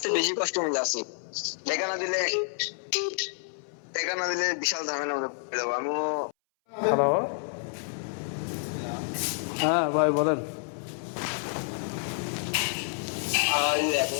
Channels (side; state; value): right; silent; 59 dB below the other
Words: বেশি কষ্ট মধ্যে আছি, টাকা না দিলে বিশাল ঝামেলার মধ্যে পড়ে যাবো আমিও। হ্যালো, হ্যাঁ ভাই বলেন।